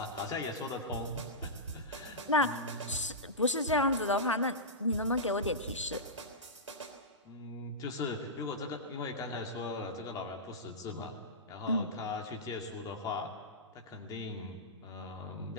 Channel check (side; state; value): both; normal; correlation -0.14